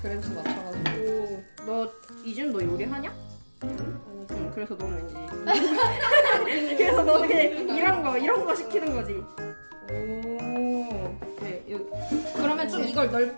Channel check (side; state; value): both; inverted; correlation -1.00